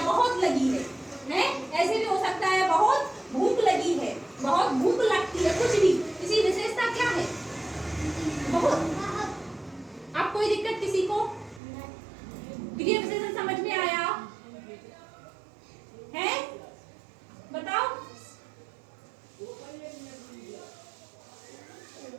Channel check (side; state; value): left; drops out; at 11.6 s